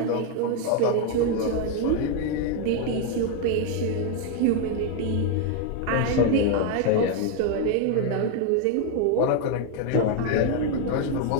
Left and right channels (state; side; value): different; both; correlation 0.01